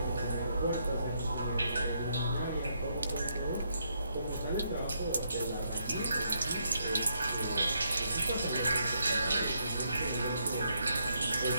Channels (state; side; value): inverted; both; correlation -0.76